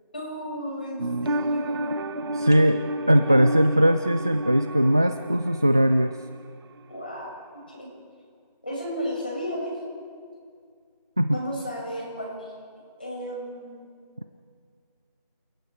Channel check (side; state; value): both; inverted; correlation -0.91